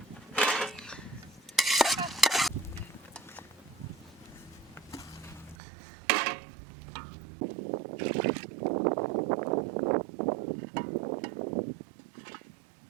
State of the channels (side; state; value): left; drops out; at 5.6 s